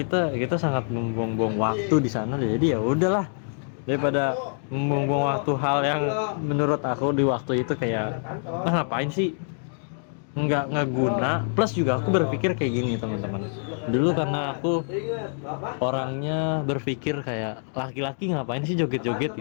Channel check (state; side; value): silent; right; digital silence